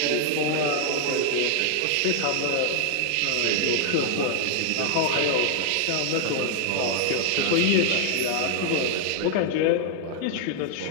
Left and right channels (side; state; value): both; different; correlation 0.00